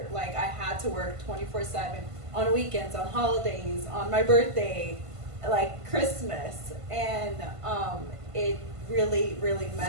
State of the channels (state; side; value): late; left; 1.5 ms